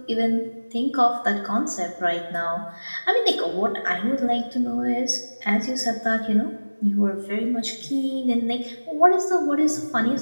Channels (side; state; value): both; inverted; correlation -1.00